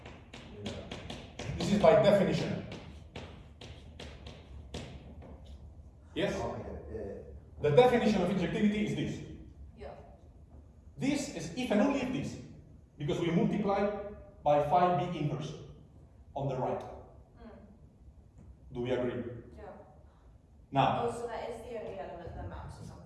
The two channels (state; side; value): identical; both; correlation 1.00